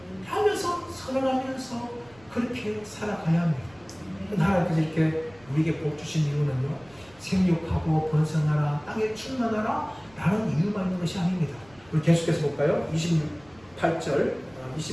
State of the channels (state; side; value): noise; right; rumble, 27 dB below the sound